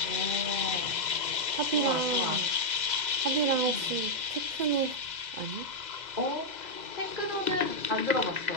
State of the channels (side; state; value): left; late; 2.0 ms